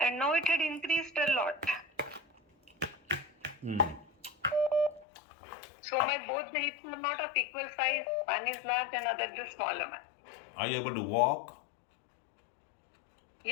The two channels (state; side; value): drops out; right; at 5.1 s